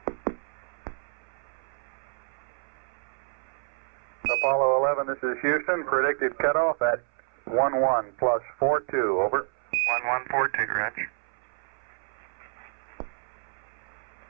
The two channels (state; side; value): silent; left; 59 dB below the other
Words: Apollo 11, this is Houston. Predicted cutoff at 11 plus 42. Over. 1142, Roger.